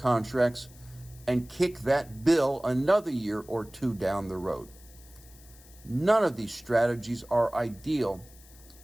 and kick that bill another year or two down the road. None of these strategies are ideal,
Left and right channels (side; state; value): left; noise; hiss, 24 dB below the sound